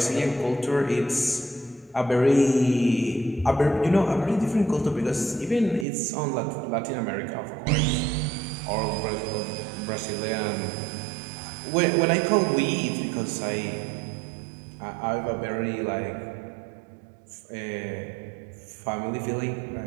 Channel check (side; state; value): left; drops out; at 5.9 s